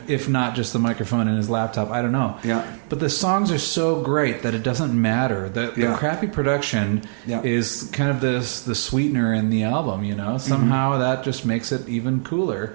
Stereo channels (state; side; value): silent; left; 64 dB below the other